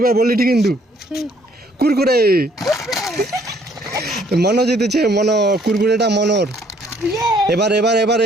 এবার বলি ঠিক কিন্তু কুরকুরে মনো জিতেছে, মনো কুরকুরেটা মনোর। এবার এবার এবার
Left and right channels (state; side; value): normal; both; correlation 0.63